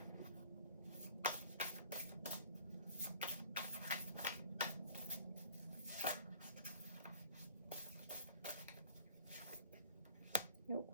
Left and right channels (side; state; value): both; inverted; correlation -0.49